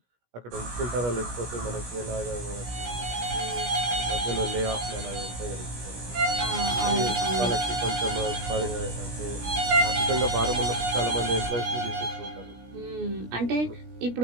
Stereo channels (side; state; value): left; late; 17 ms